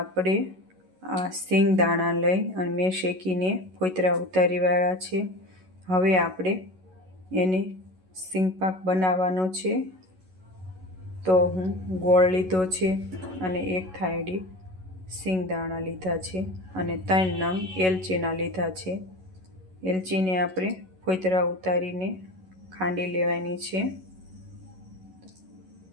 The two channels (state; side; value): late; left; 11 ms